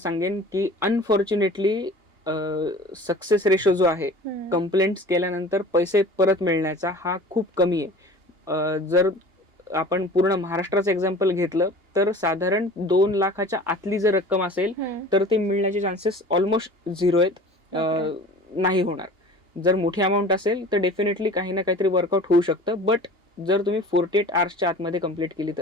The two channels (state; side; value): late; left; 2.8 ms